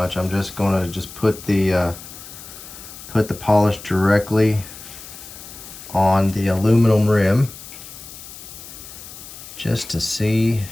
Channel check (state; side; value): noise; left; hiss, 15 dB below the sound